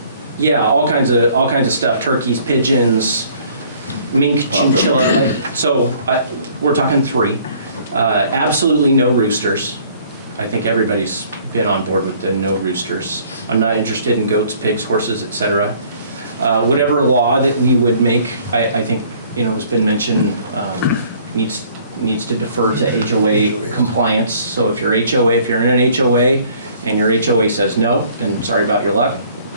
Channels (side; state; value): both; inverted; correlation -0.57